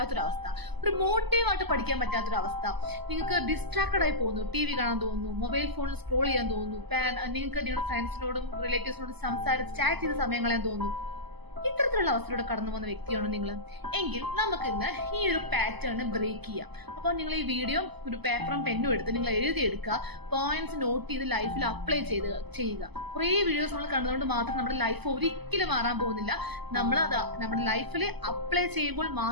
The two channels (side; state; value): left; late; 0.99 ms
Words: ഒരു മോട്ടീവായിട്ട് പഠിക്കാൻ പറ്റാത്തൊരവസ്ഥ, നിങ്ങൾക്ക് ഡിസ്ട്രാക്റ്റഡ് ആയി പോകുന്നു, TV കാണാൻ തോന്നുന്നു, മൊബൈൽ ഫോണിൽ സ്ക്രോൾ ചെയ്യാൻ തോന്നുന്നു, നിങ്ങൾക്ക് നിങ്ങളുടെ ഫ്രണ്ട്സിനോടും റിലേറ്റീവ്സിനോടും സംസാരിച്ച് ചാറ്റ് ചെയ്ത് സമയം കളയാൻ തോന്നുന്നു. ഇത്തരത്തിലുള്ള അവസ്ഥയിലൂടെ കടന്നു പോകുന്ന വ്യക്തിയാണോ നിങ്ങൾ എങ്കിൽ നമുക്ക് ഇന്ന് ഈ ഒരു പാറ്റേൺ ബ്രേക്ക് ചെയ്യാം. അപ്പോൾ നിങ്ങൾ ഈ വീഡിയോ ഒരു പേപ്പറും പെന്നും എടുത്ത് നിങ്ങൾ എഴുതിയെടുക്കുക, പോയിന്റ്സ് നോട്ട് ചെയ്ത് ലൈഫിൽ അപ്ലൈ ചെയ്യുക. കുറേ വീഡിയോസ് നമ്മൾ കണ്ടതുകൊണ്ട് മാത്രം നമ്മുടെ ലൈഫ് ഒരിക്കലും മാറാൻ പോകുന്നില്ല. നമ്മുടെ ലൈഫിൽ അപ്ലൈ ചെയ്യുമ്പോൾ